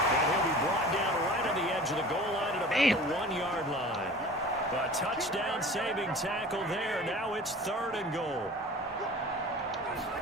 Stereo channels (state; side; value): normal; both; correlation 0.41